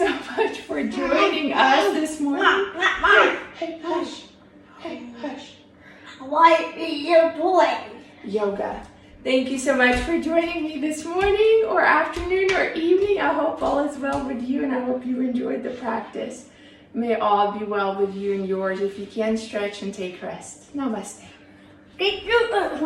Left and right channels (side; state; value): both; identical; correlation 1.00